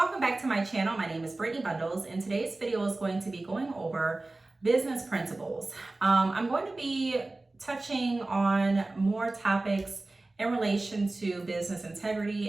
welcome back to my channel. My name is Brittney Bundles, and today's video is going to be going over business principles. I'm going to be touching on more topics in relation to business integrity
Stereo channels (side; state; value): left; quieter; 3.0 dB